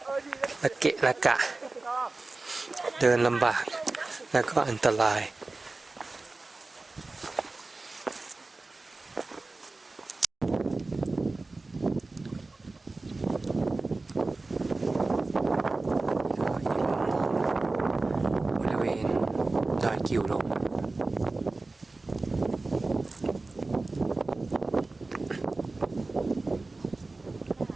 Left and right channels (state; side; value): quieter; left; 3.4 dB